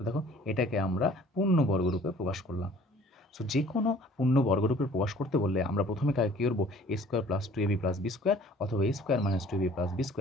দেখো এটাকে আমরা পূর্ণ বর্গরূপে প্রকাশ করলাম। সো যে কোনো পূর্ণ বর্গরূপে প্রকাশ করতে বললে আমরা প্রথমে কাকে কী করবো, A square plus 2ab plus B square অথবা A square minus 2ab plus B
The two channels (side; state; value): both; normal; correlation 0.52